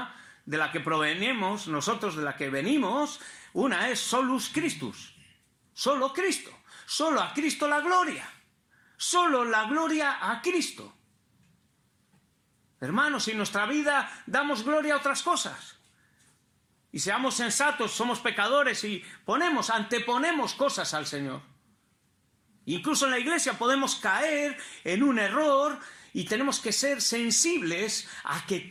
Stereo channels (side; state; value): both; identical; correlation 1.00